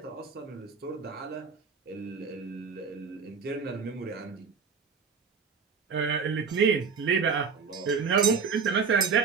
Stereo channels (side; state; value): left; quieter; 5.6 dB